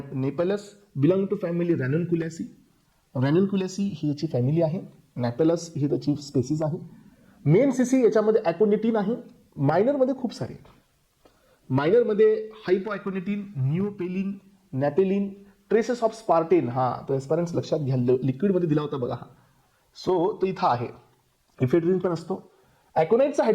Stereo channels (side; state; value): both; identical; correlation 1.00